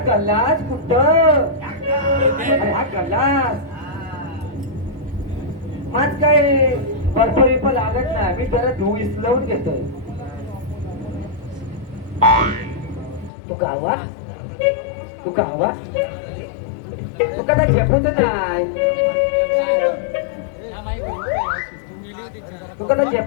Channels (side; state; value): right; drops out; at 13.3 s